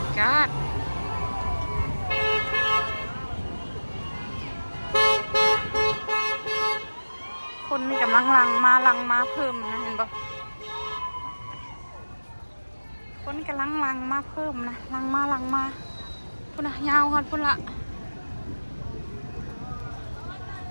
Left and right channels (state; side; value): inverted; both; correlation -1.00